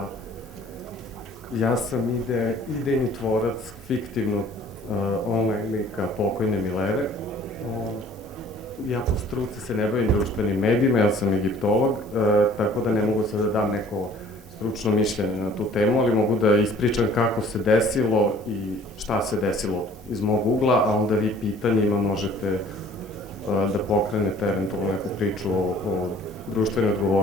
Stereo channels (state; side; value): noise; right; hiss, 30 dB below the sound